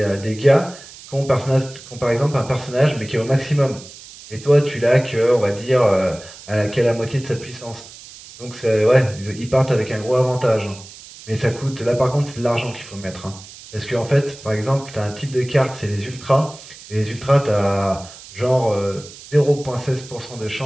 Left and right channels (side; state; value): right; noise; hiss, 18 dB below the sound